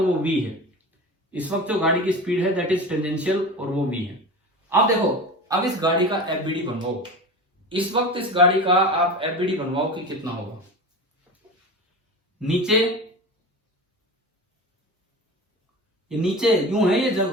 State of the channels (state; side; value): normal; both; correlation 0.29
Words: वो v है। इस वक्त जो गाड़ी की स्पीड है दैट इज टेंजेंशियल और वो v है। अब देखो, अब इस गाड़ी का एफबीडी बनवाओ। इस वक्त इस गाड़ी का आप एफबीडी बनवाओ कि कितना होगा। नीचे ये नीचे यूं है, ये